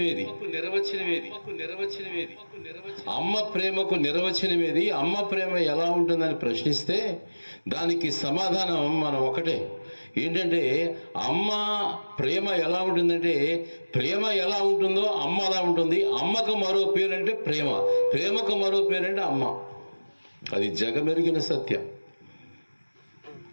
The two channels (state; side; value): inverted; both; correlation -1.00